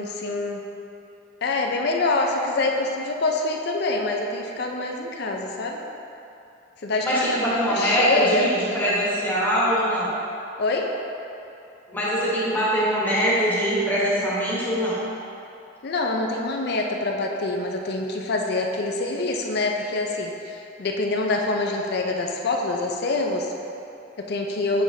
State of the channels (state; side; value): normal; both; correlation 0.07